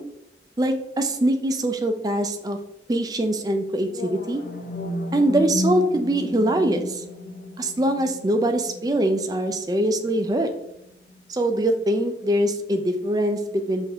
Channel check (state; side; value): normal; both; correlation 0.70